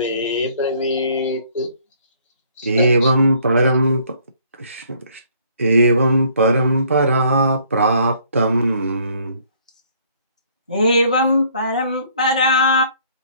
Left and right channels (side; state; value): both; inverted; correlation -0.62